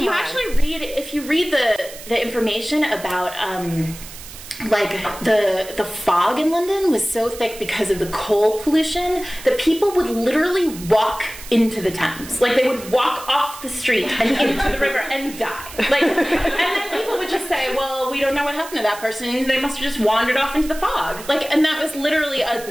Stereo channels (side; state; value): right; noise; hiss, 15 dB below the sound